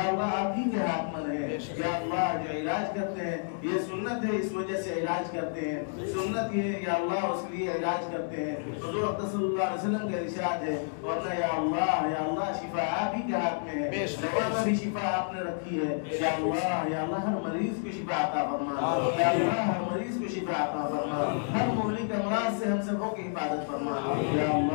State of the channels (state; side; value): silent; right; 58 dB below the other